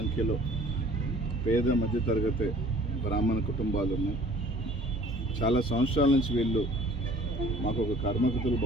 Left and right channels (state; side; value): normal; both; correlation 0.51